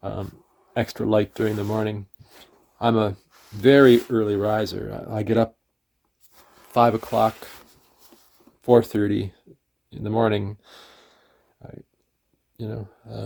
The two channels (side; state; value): both; identical; correlation 1.00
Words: um, extra light during the morning. I'm a very early riser. I get up 5 o'clock, 4:30 in the morning. I, you know,